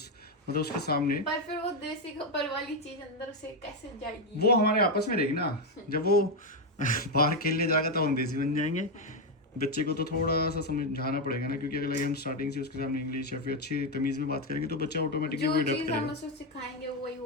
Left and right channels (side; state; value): both; normal; correlation 0.05